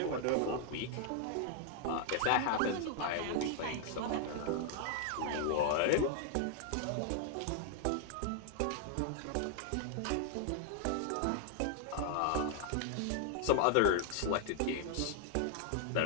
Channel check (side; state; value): both; different; correlation 0.00